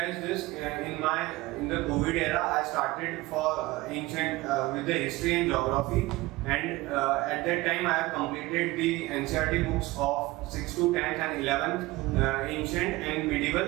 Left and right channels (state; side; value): quieter; left; 20.0 dB